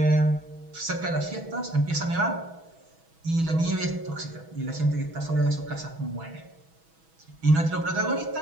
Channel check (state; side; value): late; left; 6.2 ms